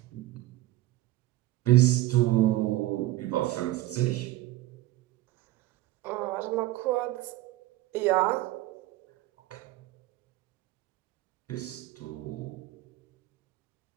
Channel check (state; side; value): quieter; left; 16.8 dB